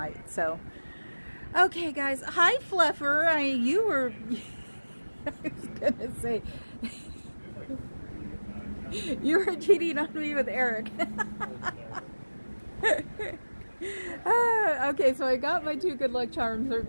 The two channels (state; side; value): inverted; both; correlation -1.00